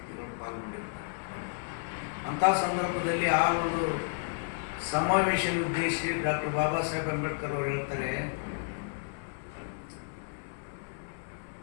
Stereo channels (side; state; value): right; silent; 57 dB below the other